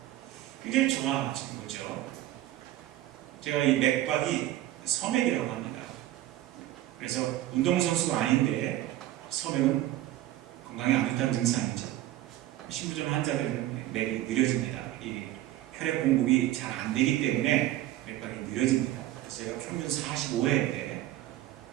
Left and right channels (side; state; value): left; quieter; 14.4 dB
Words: 굉장히 좋아지는 거죠. 제가 이 맥박이 서맥이라고 합니다. 그래서 운동선수가 아닌데 서맥은 건강에 안 좋다는 증상이죠. 신부전 환자들은 맥이 느려집니다. 이 혈액 공급이 잘 안 되기 때문에 맥박이 느려집니다. 그래서 제가 평균 45회인데